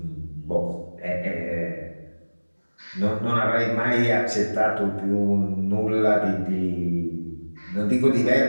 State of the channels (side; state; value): both; inverted; correlation -1.00